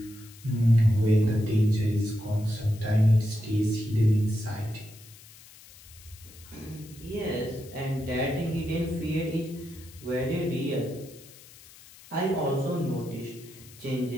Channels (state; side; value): noise; left; hiss, 21 dB below the sound